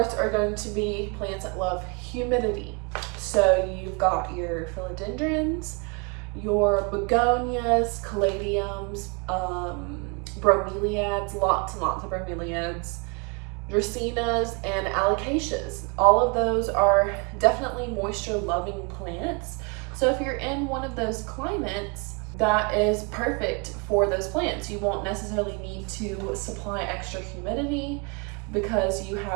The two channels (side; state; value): left; quieter; 32.7 dB